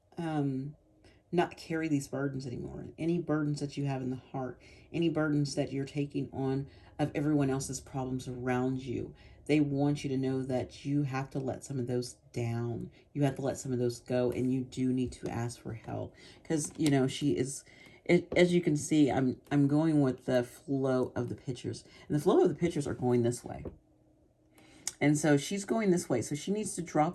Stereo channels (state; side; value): identical; both; correlation 1.00